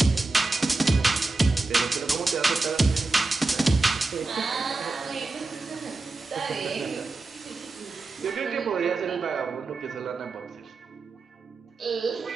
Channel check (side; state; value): left; quieter; 3.4 dB